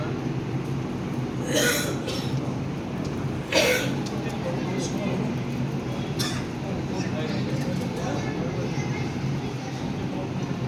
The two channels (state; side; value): identical; both; correlation 1.00